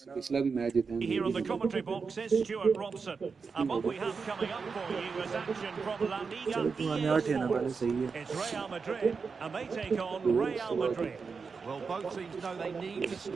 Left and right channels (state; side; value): quieter; left; 5.1 dB